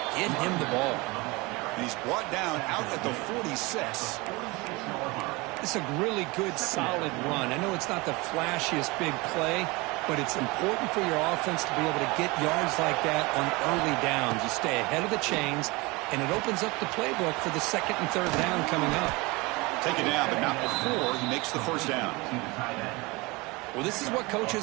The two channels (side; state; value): left; quieter; 24.5 dB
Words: Get him the ball. And he's brought down out at the 46. It's a really good, solid run. I know it's not the flashiest big play, but it's important for your offense to be able to get yards like that on early downs. You stay ahead of the chains, and it opens up the playbook for the 2nd and 3rd down coming up. Take it down, but not before he makes the 1st down. Well, this is what